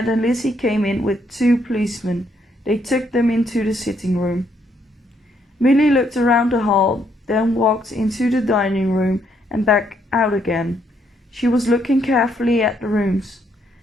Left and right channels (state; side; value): normal; both; correlation 0.73